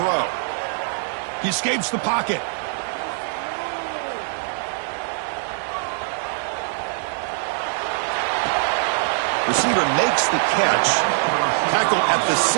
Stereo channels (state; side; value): silent; left; digital silence